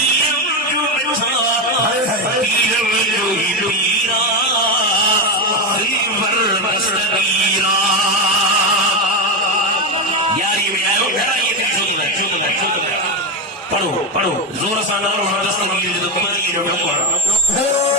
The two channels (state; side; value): normal; both; correlation 0.12